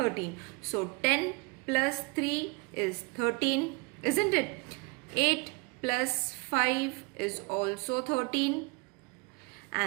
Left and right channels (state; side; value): quieter; left; 28.6 dB